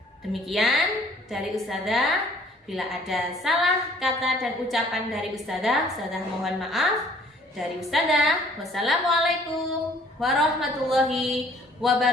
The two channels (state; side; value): normal; both; correlation 0.57